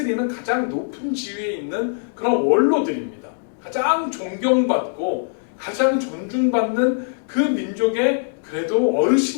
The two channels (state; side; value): silent; right; digital silence